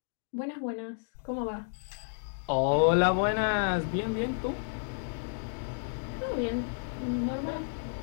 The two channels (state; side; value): silent; right; digital silence